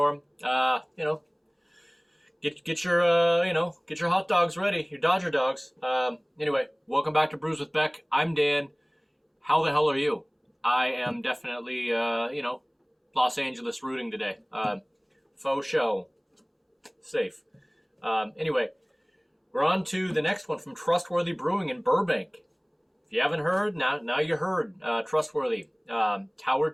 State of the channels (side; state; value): both; identical; correlation 1.00